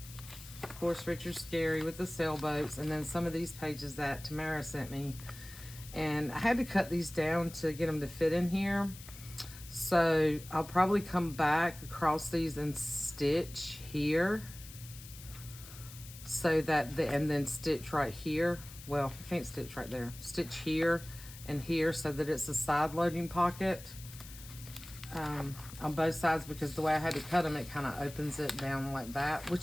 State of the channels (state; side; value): noise; left; hiss, 16 dB below the sound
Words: Of course, Richard Scarry with the sailboats, and then some of these pages that Tamara sent me, and I had to cut these down to get them to fit in here. So I'll probably come back across these and stitch here, so that and then stitch right here. Well, I can't stitch right there. Stitch here and here so that it's a side loading pocket on both sides, because the way I had to cut them, it kind of opens it down like that, which